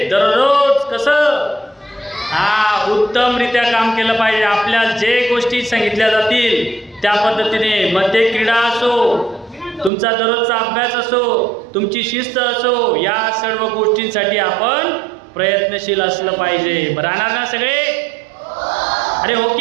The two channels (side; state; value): left; drops out; at 9.9 s